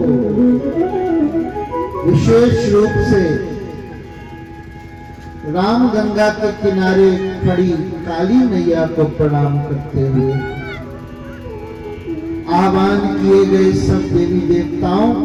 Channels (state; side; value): identical; both; correlation 1.00